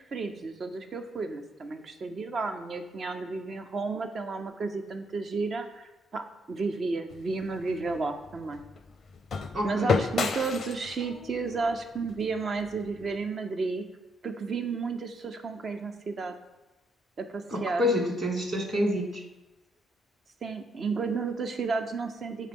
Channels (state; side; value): normal; both; correlation 0.74